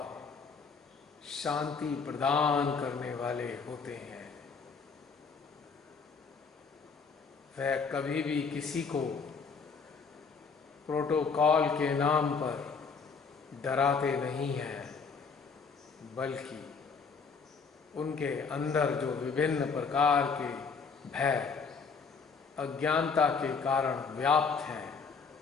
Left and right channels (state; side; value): quieter; right; 5.2 dB